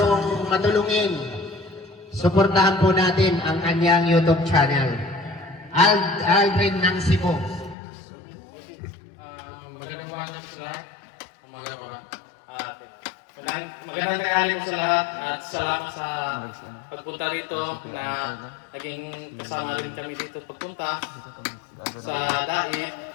matulungin. Suportahan po natin ang kanyang YouTube channel. Aldrin ng Cebu. Magandang umaga po sa lahat. Magandang tanghali po sa lahat at salamat sa pagpunta rito na naging kasama rin kami dito pagpunta sa Dait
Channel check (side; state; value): right; drops out; at 7.8 s